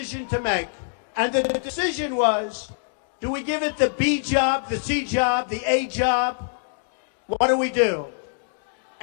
to make. And the decision was, do we give it the B job, the C job, the A job? What do we do?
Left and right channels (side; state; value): right; silent; digital silence